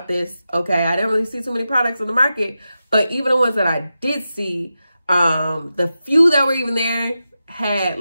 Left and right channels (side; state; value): both; inverted; correlation -0.91